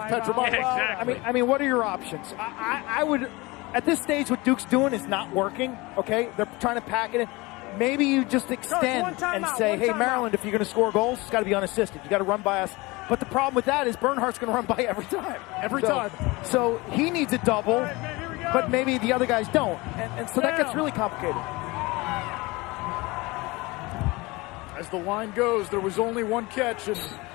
Petramala. Yeah, exactly. I mean, what are your options? I would, at this stage, what Duke's doing is not working, okay? They're trying to pack it in. Maybe you just extend and say, hey, Maryland, if you're going to score goals, it's got to be unassisted. You got to run by us. But the problem with that is Bernhardt's going to run by every time. Every time. So he needs a double, but maybe the other guys don't. And so that gets really complicated. As the line goes, there was only one catch, and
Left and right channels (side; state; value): right; quieter; 23.2 dB